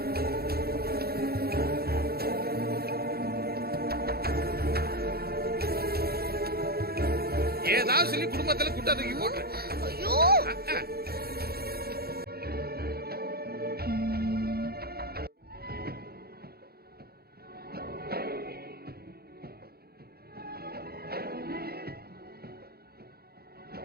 ஏதாவது சொல்லி குடும்பத்துல குட்டா தூக்கி போட்டு. ஐயோ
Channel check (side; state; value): left; late; 0.45 ms